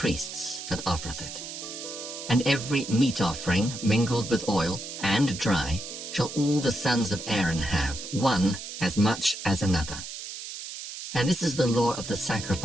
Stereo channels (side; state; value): right; noise; hiss, 9 dB below the sound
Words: that offereth it. And every meat offering mingled with oil and dry shall all the sons of Aaron have, one as much as another. And this is the law of the